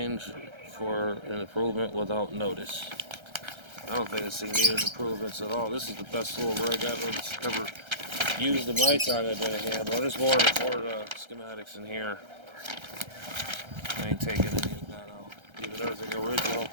for an improvement without notice. I don't think this thing needed improvements at all. This is the best little rig I've ever used in my time I've been a handler. There's more schematics in here. I ain't taking any of that out. Even everything original.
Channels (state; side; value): late; left; 1.3 ms